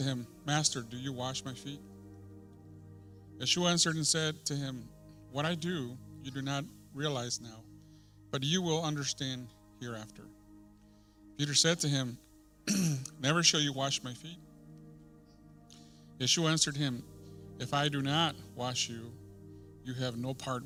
him, Master, do you wash my feet? Yeshua answered and said to him, What I do, you do not realize now, but you will understand hereafter. Peter said to him, Never shall you wash my feet. Yeshua answered him, If I do not wash you, you have no part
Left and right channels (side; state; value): both; identical; correlation 1.00